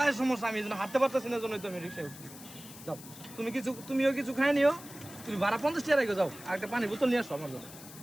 সমস্যা আমি হাঁটতে পারতেছি না জন্য আমি রিক্সায় উঠছি যাও তুমিও কিছু খাই নিও তুমি ভাড়া 50 টাকা রেখে যাও আর একটা পানি বোতল নিয়ে আসো আমার জন্য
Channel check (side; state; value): left; noise; hiss, 16 dB below the sound